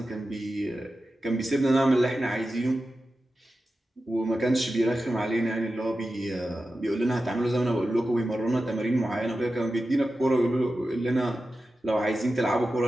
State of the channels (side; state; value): both; normal; correlation 0.92